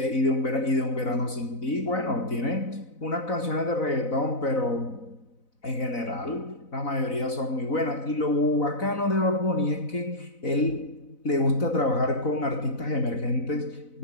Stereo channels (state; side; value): late; right; 4.0 ms